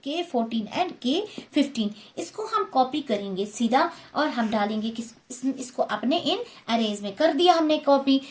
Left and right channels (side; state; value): both; identical; correlation 1.00